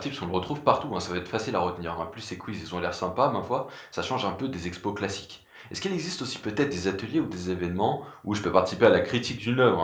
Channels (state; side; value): identical; both; correlation 1.00